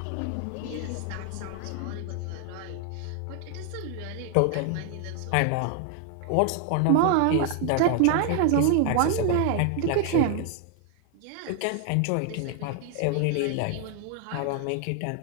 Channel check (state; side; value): different; both; correlation 0.00